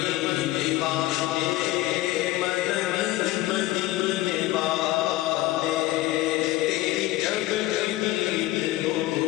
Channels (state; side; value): quieter; right; 17.2 dB